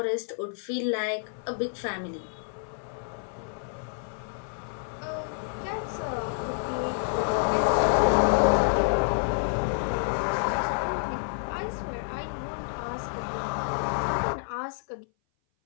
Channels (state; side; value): silent; right; 57 dB below the other